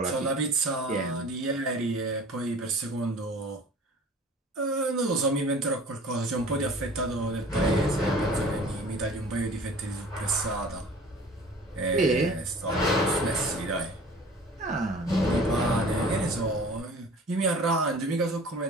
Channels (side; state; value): both; normal; correlation 0.44